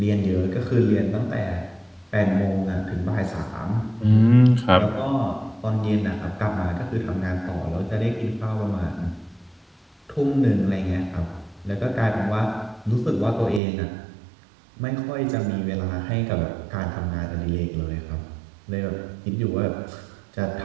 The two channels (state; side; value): drops out; left; at 13.6 s